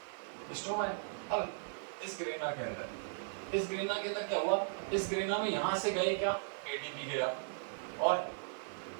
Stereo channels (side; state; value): left; silent; 53 dB below the other